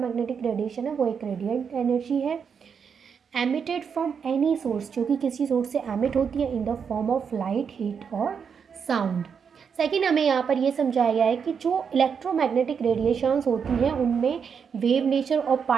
रेडिएशन है वो एक रेडिएंट एनर्जी है एमिटेड फ्रॉम एनी सोर्स, जो कि किसी सोर्स से एमिट होती है इन the form of light, heat और साउंड। सेकेंड, हमें यहाँ पर ये समझाया गया है कि जो इलेक्ट्रोमैग्नेटिक रेडिएशंस होती हैं उनमें वेव नेचर और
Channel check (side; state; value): left; quieter; 6.7 dB